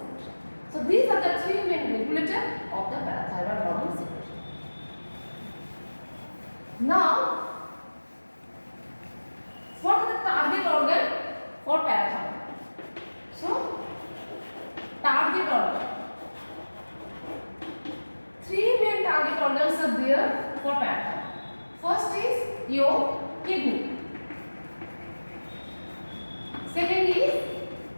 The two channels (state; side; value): inverted; both; correlation -1.00